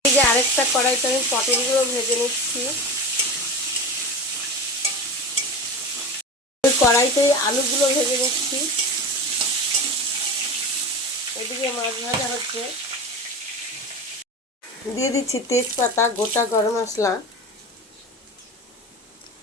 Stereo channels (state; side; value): normal; both; correlation 0.28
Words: এই যে আরেকটা কড়াইতে আমি পটলগুলো ভেজে নিচ্ছি। ওই কড়াইতেই আলুগুলো ভেজে নিচ্ছি। এদিকে মাছ ভাজা হচ্ছে। দিয়ে দিচ্ছি তেজপাতা, গোটা গরম মশলা,